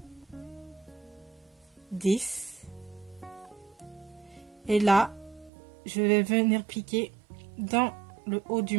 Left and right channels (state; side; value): drops out; left; at 5.5 s